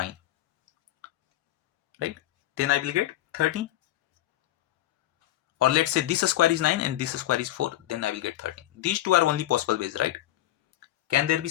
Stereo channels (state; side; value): quieter; right; 14.5 dB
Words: right? Then I will get 13. Or let's say this square is 9 and this square is 4, then I will get 13. These two are only possible ways, right? Can there be